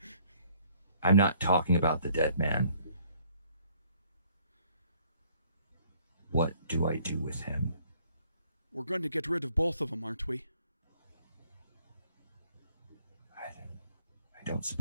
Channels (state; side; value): inverted; both; correlation -0.62